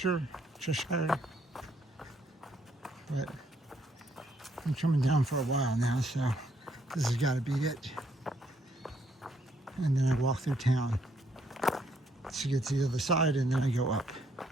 But I'm coming down for a while now, so this has got to be it. And then I walk through town to get to the other side, and then I go up.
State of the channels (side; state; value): both; normal; correlation 0.71